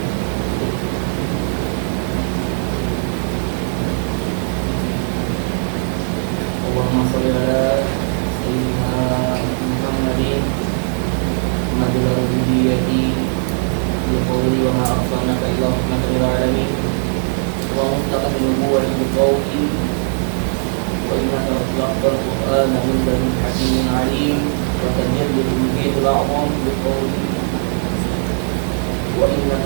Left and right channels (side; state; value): left; silent; 66 dB below the other